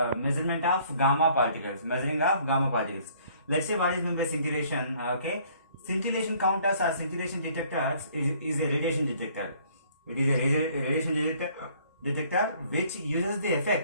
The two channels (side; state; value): both; inverted; correlation -0.59